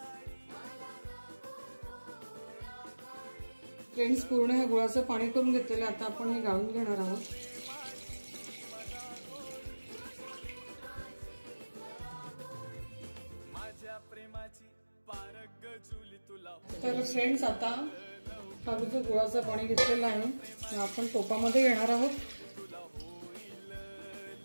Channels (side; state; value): both; inverted; correlation -1.00